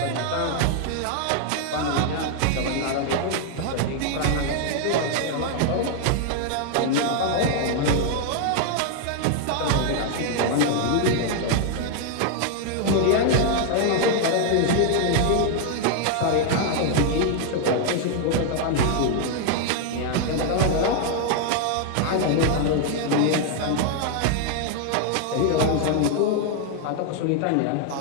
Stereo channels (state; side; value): different; both; correlation 0.00